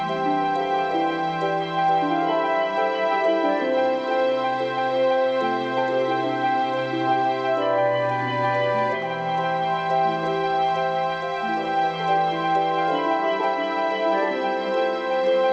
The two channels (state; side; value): identical; both; correlation 1.00